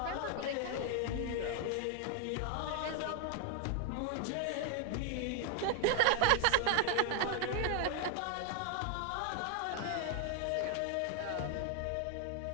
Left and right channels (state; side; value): different; both; correlation 0.00